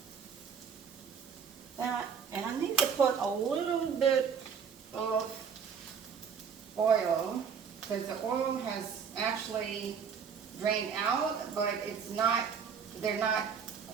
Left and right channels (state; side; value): quieter; left; 6.7 dB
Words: And I need to put a little bit of oil, because the oil has actually drained out, but it's not, they're not